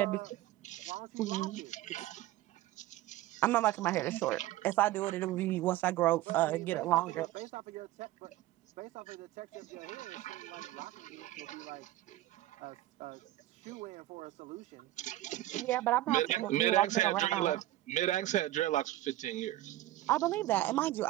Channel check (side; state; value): left; quieter; 15.4 dB